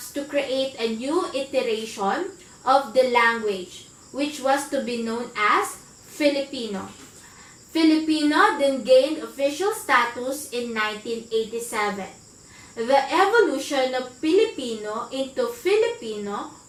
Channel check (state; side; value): identical; both; correlation 1.00